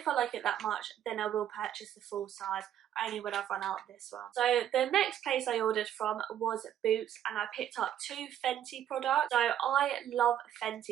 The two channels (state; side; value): quieter; left; 10.6 dB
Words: I like it that much, then I will purchase the full size, only when I've run out of this one. So the next place I ordered from was Boots, and I picked up 2 Fenty products. So I love